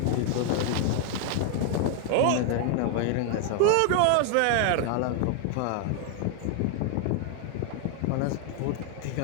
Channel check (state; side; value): different; both; correlation 0.00